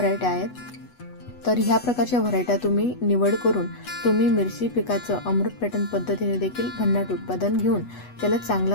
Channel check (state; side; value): late; right; 8.1 ms